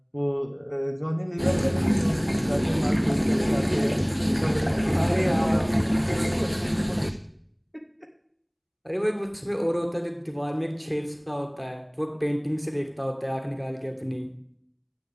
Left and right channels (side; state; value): both; identical; correlation 1.00